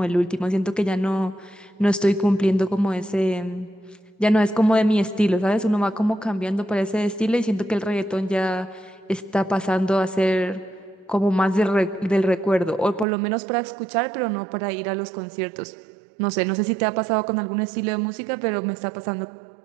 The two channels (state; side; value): drops out; left; at 13.1 s